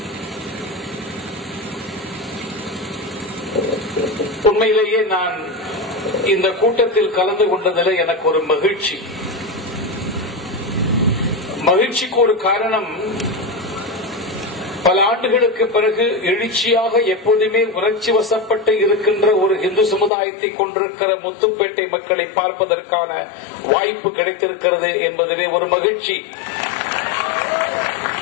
உண்மையிலேயே நான் இந்த கூட்டத்தில் கலந்து கொண்டதில் எனக்கு ஒரு மகிழ்ச்சிக்கு ஒரு காரணம், பல ஆண்டுகளுக்கு பிறகு எழுச்சியாக எப்போதுமே உணர்ச்சி வசப்பட்டு இருக்கின்ற ஒரு இந்து சமுதாயத்தை கொண்டிருக்கிற முத்துப்பேட்டை மக்களை பார்ப்பதற்கான வாய்ப்பு கிடைத்திருக்கிறது என்பதிலே ஒரு மகிழ்ச்சி.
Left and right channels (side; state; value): right; drops out; at 20.1 s